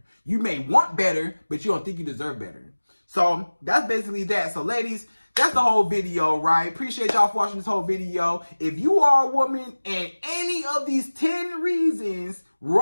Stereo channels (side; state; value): both; inverted; correlation -1.00